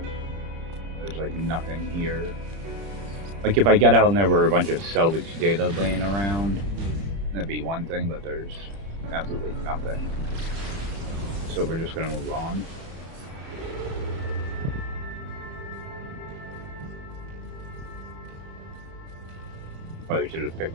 There's like nothing here. Like, if I get out and there were a bunch of salvage data laying around, that'd be one thing, but there's absolutely nothing. So we're just gonna move on. Probably should have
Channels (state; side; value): late; left; 30 ms